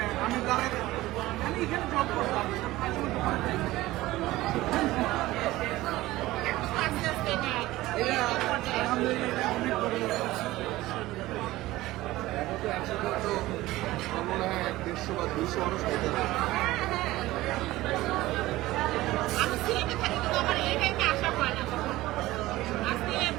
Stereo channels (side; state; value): left; quieter; 17.5 dB